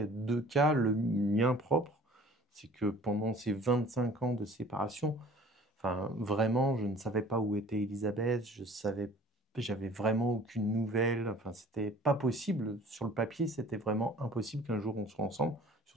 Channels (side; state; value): both; normal; correlation 0.49